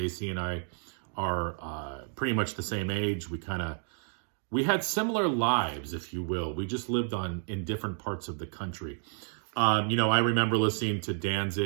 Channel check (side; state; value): left; silent; 57 dB below the other